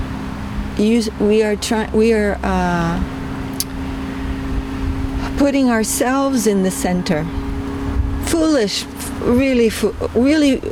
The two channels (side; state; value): both; identical; correlation 1.00